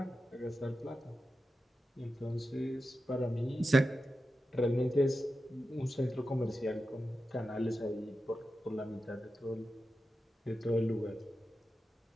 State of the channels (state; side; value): normal; both; correlation 0.91